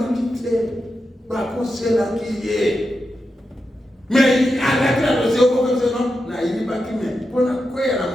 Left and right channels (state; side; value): normal; both; correlation 0.88